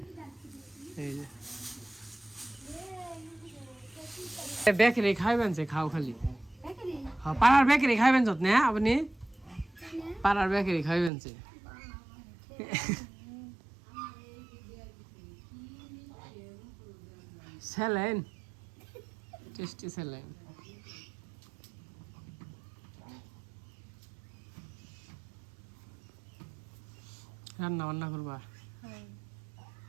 এই যে বেকারি খাইবেন যে খাও খালি হ্যাঁ পাড়ার বেকারি খাইবেন যত না আপনি পাড়ার বেকারি খাইবেন যে স্যালাইন টেস্টি স্যালাইন রান্না বান্না করবা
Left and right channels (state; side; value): drops out; left; at 11.1 s